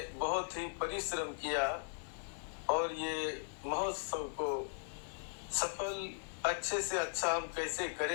बहुत ही परिश्रम किया और ये महोत्सव को सफल अच्छे से अच्छा हम कैसे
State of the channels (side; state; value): right; silent; digital silence